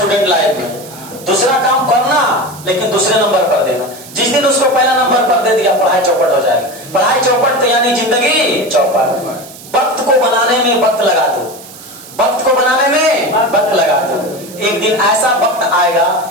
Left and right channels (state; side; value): noise; right; hiss, 18 dB below the sound